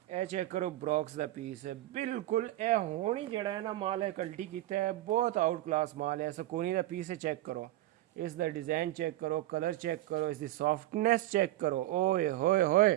ए चेक करो ब्रॉक्स का पीस है बिल्कुल ए होनी जड़ा है ना माल है कल्टी किया है बहुत आउट क्लास माल है। सकोनी का पीस है चेक करो इसका डिज़ाइन चेक करो कलर चेक करो इसकी सॉफ्टनेस चेक करो। ओए होए होए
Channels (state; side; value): quieter; left; 15.6 dB